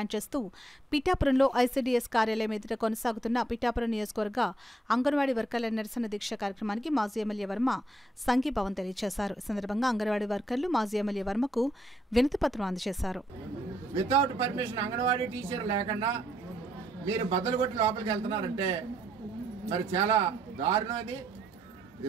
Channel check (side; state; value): both; normal; correlation 0.74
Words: చేస్తూ పిఠాపురంలో ఐసీడీఎస్ కార్యాలయం ఎదుట కొనసాగుతున్న పిఠాపురం నియోజకవర్గ అంగన్వాడీ వర్కర్ల నిరసన దీక్ష కార్యక్రమానికి మాజీ ఎమ్మెల్యే వర్మ సంఘీభావం తెలియజేశారు. ఈ సందర్భంగా అంగన్వాడీ వర్కర్లు మాజీ ఎమ్మెల్యే వర్మకు వినతిపత్రం అందజేశారు. వితౌట్ పర్మిషన్ అంగన్వాడీ టీచర్ లేకుండా మీరు బద్దలు కొట్టి లోపలికి వెళ్తున్నారంటే మరి చాలా దారుణం.